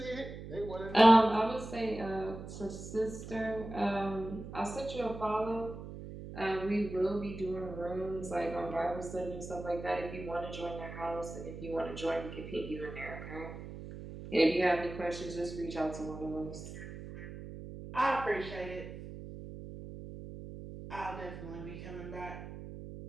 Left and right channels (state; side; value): noise; right; hum, 11 dB below the sound